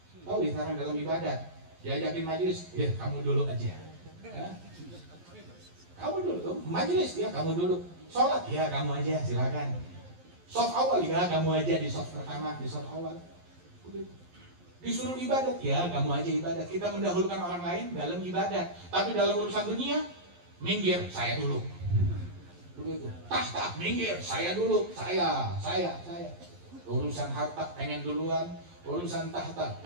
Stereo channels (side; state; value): left; late; 11 ms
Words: Tahu isarnya dalam ibadat? Diajakin majelis, ya kamu dulu aja. Kamu dulu, majelis ya kamu dulu. Sholat ya kamu aja, silakan. Soft awal ya kamu aja di soft pertama, di soft awal. Disuruh ibadat ya kamu aja ibadat. Kita mendahulukan orang lain dalam ibadat, tapi dalam urusan dunia, minggir saya dulu. Begitu. Tahta minggir saya dulu, saya. Urusan harta pengen duluan, urusan tahta